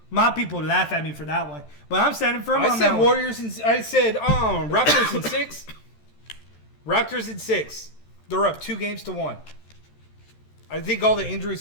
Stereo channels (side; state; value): right; late; 13 ms